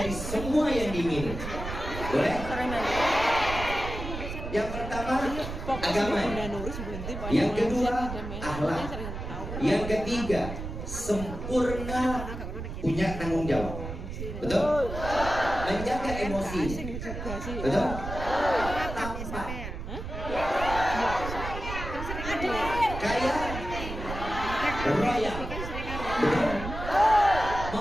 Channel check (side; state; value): right; noise; rumble, 7 dB below the sound